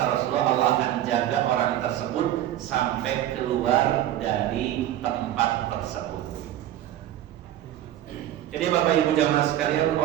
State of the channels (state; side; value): quieter; left; 12.6 dB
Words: Rasulullah, Allah akan jaga orang tersebut sampai keluar dari tempat tersebut. Jadi Bapak Ibu jamaah sekalian,